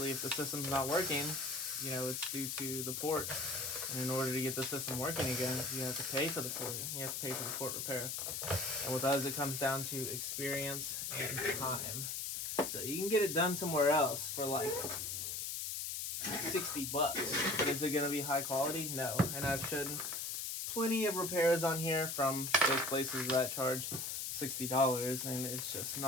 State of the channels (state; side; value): noise; left; hiss, 3 dB below the sound